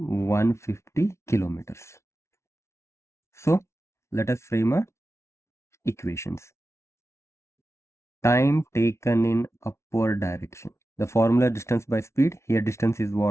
kilometers. So let us frame a equations. Time taken in upward direction. The formula distance by speed. Here distance is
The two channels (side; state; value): right; late; 0.13 ms